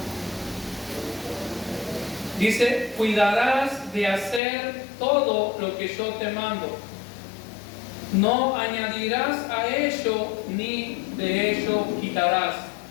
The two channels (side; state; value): right; drops out; at 4.4 s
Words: Dice, cuidarás de hacer todo lo que yo te mando. No añadirás a ello ni de ello quitarás.